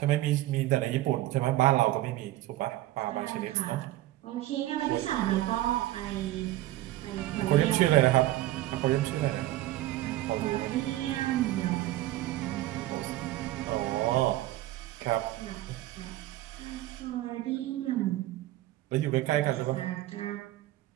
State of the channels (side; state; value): left; quieter; 15.9 dB